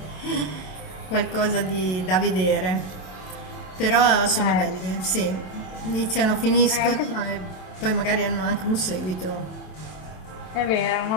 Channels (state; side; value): late; right; 27 ms